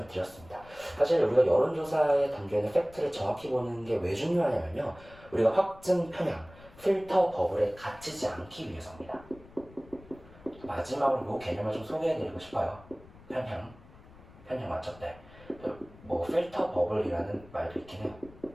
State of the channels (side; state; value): left; noise; rumble, 22 dB below the sound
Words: 드렸습니다. 사실 우리가 여론조사의 단계에는 팩트를 정확히 보는 게 왜 중요하냐면요, 우리가 확증 편향, 필터 버블에 갇히지 않기 위해서입니다. 마지막으로 이 개념을 좀 소개해드리고 싶어요. 편향 맞죠? 네. 뭐 필터 버블이라는 말도 있긴 해요.